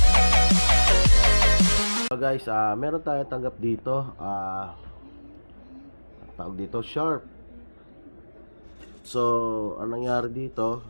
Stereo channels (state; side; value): inverted; both; correlation -1.00